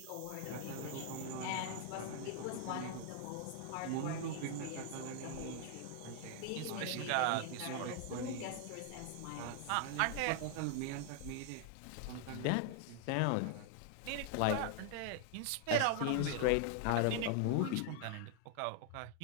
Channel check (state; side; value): different; both; correlation 0.00